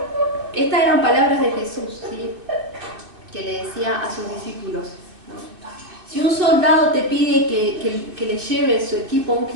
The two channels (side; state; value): left; late; 2.5 ms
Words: Estas eran palabras de Jesús, ¿sí? Que le decía a sus discípulos, ¿no? Si un soldado te pide que le lleve su equipo 1